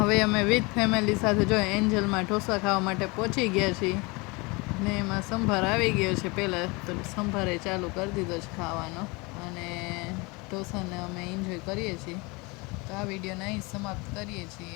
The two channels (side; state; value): right; quieter; 26.6 dB